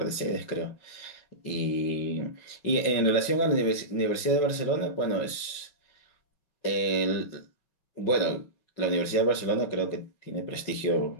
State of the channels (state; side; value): late; right; 5.5 ms